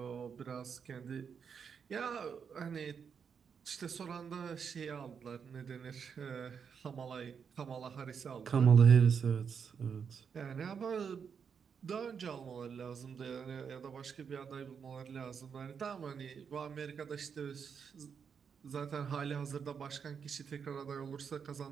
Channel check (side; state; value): left; quieter; 6.7 dB